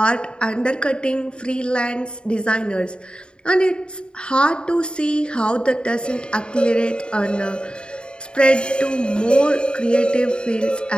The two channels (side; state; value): right; late; 0.051 ms